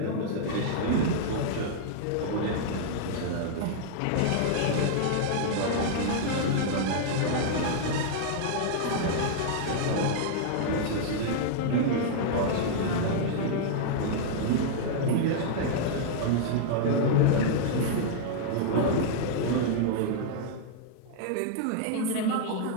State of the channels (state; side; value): different; both; correlation -0.01